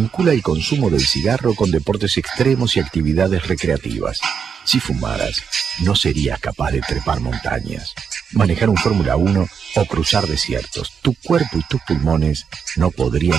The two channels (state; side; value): quieter; left; 6.7 dB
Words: el consumo del cigarro con deportes extremos y actividades recreativas. Si fumaras, no serías capaz de trepar montañas, manejar un Fórmula 1 o cruzar desiertos. Tu cuerpo y tus pulmones no